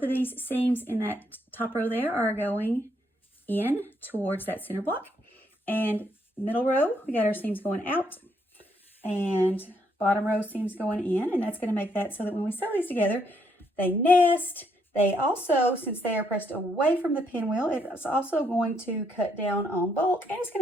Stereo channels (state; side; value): normal; both; correlation 0.73